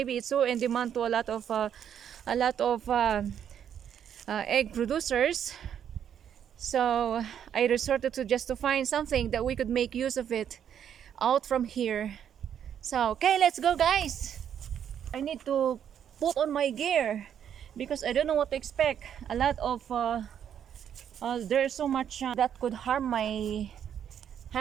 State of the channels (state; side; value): quieter; left; 9.0 dB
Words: it's so in demand to a lot of egg producers. So I resorted to just to find something that we could make use of it out from here. So okay, let's go guys. I need to put on my gear because I don't know what to expect. A lot of there's so much that could harm my